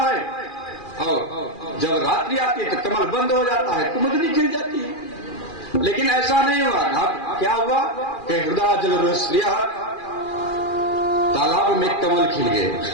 और जब रात्रि आती है तो कमल बंद हो जाता है, कुमुदनी खिल जाती है। लेकिन ऐसा नहीं हुआ। अब क्या हुआ कि हृदय जलरुह तालाब में कमल खिल गए।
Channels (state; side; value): late; right; 2.4 ms